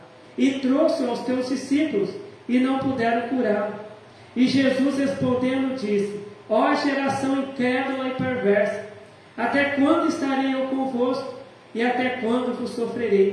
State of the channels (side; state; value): both; identical; correlation 1.00